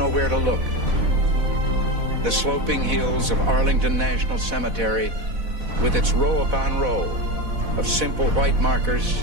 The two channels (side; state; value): left; late; 4.1 ms